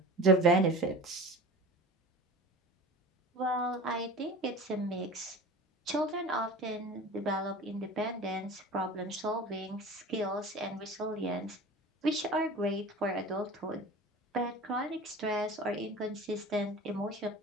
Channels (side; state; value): both; normal; correlation 0.36